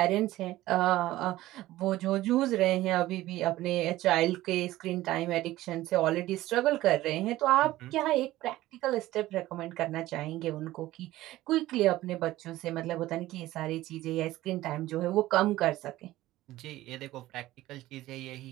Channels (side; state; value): left; quieter; 16.2 dB